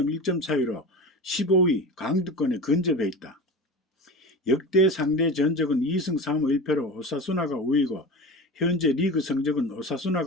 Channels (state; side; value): normal; both; correlation 0.30